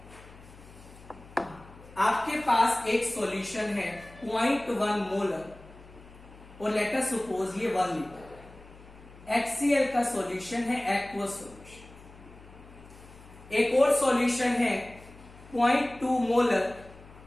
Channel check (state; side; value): noise; left; hum, 21 dB below the sound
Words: आपके पास एक सॉल्यूशन है 0.1 मोलर और लेट अस सपोज ये 1 लीटर। HCl का सॉल्यूशन है एक्वस सॉल्यूशन। एक और सॉल्यूशन है 0.2 मोलर